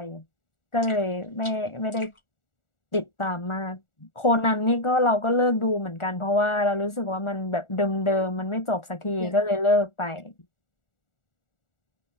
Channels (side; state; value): right; late; 1.4 ms